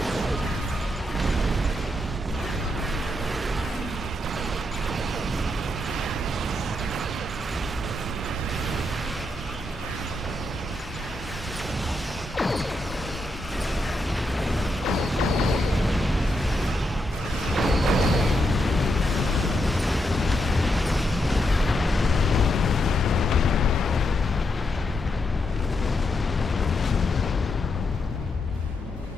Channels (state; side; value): normal; both; correlation 0.82